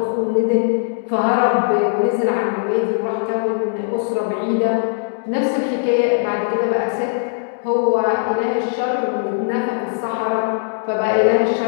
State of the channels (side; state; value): right; silent; digital silence